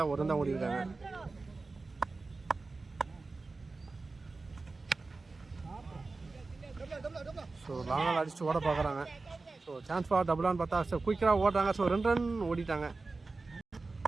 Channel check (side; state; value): left; quieter; 3.7 dB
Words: 1 ரன் தான் ஓடிருக்காங்க. ஸோ லாங்கால் அடிச்சுட்டு ஓட பார்க்குறாங்க. ஸோ சான்ஸ் ஃபார் டபுளான்னு பார்த்தா ஸோ குயிக்காக ஓடுறாங்க. ஸோ 2 ரன் ஓடிட்டாங்க.